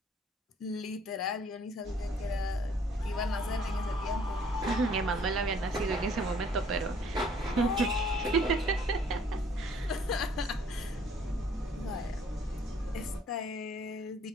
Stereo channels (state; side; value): normal; both; correlation 0.60